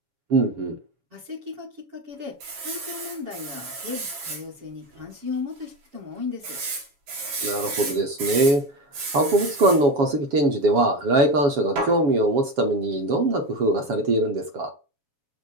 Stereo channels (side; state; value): left; late; 7.2 ms